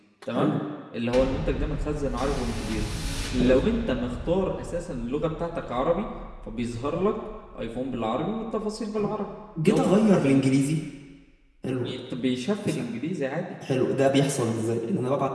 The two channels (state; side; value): identical; both; correlation 1.00